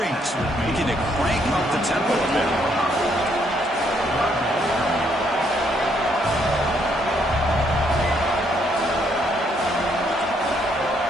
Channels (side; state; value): both; normal; correlation 0.71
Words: looking to crank up the tempo a bit.